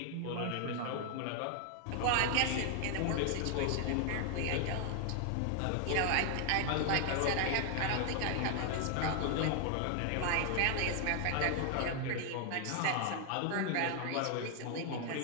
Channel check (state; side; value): different; both; correlation 0.00